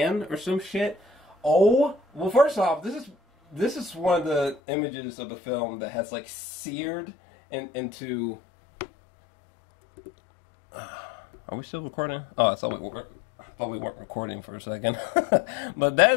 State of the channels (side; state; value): right; drops out; at 4.6 s